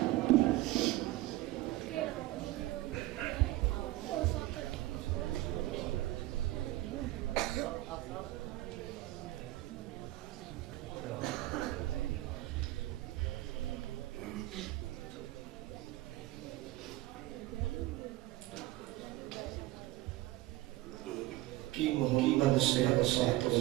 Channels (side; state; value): left; quieter; 17.3 dB